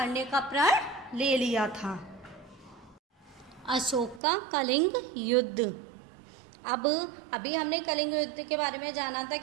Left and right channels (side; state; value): left; drops out; at 4.2 s